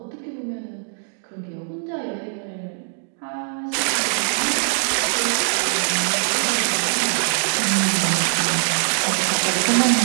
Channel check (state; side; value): silent; left; digital silence